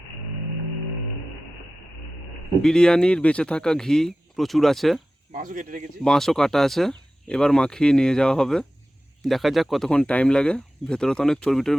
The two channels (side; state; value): both; normal; correlation 0.95